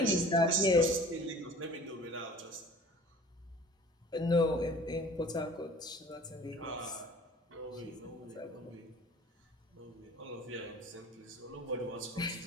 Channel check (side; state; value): both; normal; correlation 0.46